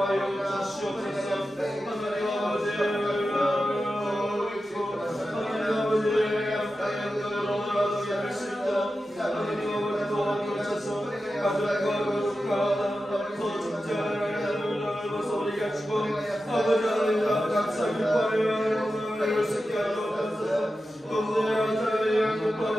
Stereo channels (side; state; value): both; normal; correlation 0.92